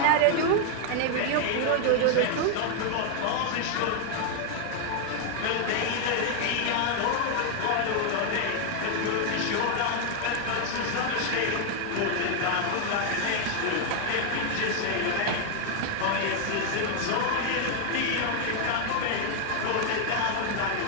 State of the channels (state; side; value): different; both; correlation 0.00